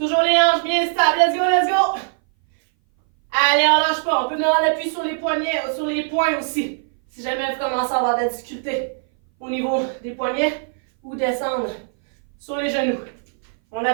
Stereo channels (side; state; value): left; silent; 60 dB below the other